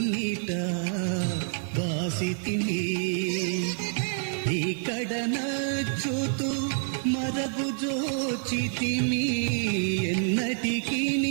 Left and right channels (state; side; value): silent; left; 60 dB below the other